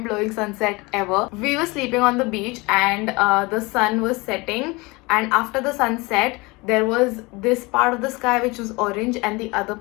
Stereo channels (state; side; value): quieter; right; 24.7 dB